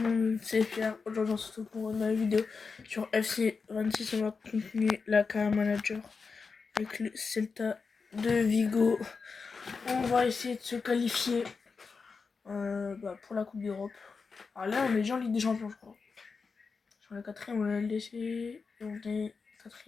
monde, c'est Pierre. Aujourd'hui on se retrouve pour une nouvelle vidéo sur FC 26. On va continuer la carrière manager avec le Celta de Vigo. On va essayer de se qualifier pour la Coupe d'Europe. Alors là on est déjà en Ligue des Champions je crois. Sur la 4ème on est LDC et on est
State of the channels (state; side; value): quieter; right; 4.9 dB